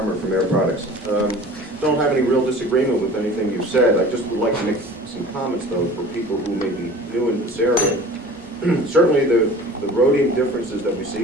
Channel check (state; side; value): normal; both; correlation 0.42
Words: from Air Products. Don't have any real disagreement with anything you've said. I just would like to make some comments, though, for people who may be new in this area. Certainly the rhodium differences that we see